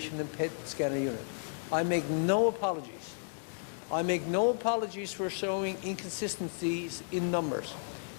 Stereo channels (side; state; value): right; silent; digital silence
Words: and PET scanner unit. I make no apologies. I make no apologies for showing inconsistencies in numbers.